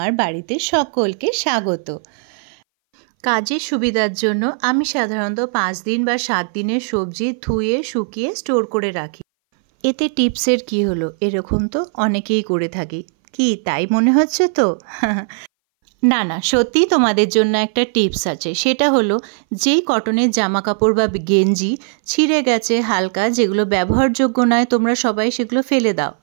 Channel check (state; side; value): silent; left; 61 dB below the other